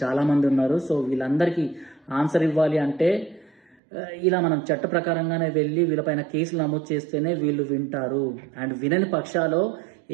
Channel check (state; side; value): drops out; left; at 3.8 s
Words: చాలామంది ఉన్నారు. సో వీళ్ళందరికీ ఆన్సర్ ఇవ్వాలి అంటే ఇలా మనం చట్ట ప్రకారంగానే వెళ్ళి వీళ్ళపైన కేసులు నమోదు చేస్తేనే వీళ్ళు వింటారు. అండ్ వినని పక్షాలో